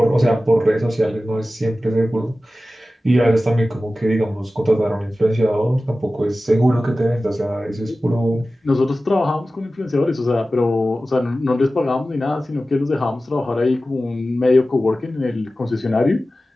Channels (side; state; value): both; normal; correlation 0.95